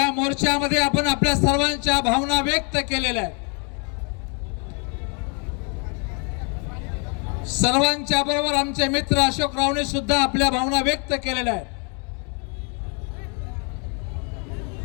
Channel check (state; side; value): quieter; right; 36.6 dB